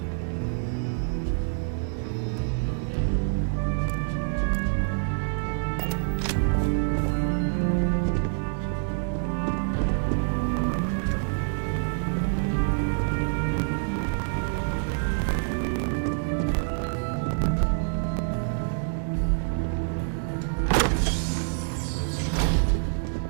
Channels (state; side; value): silent; left; digital silence